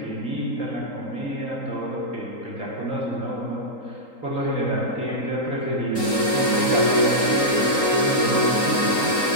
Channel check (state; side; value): late; right; 3.8 ms